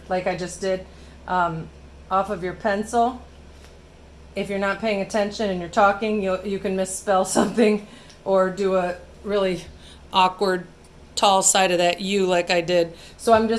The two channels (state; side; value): identical; both; correlation 1.00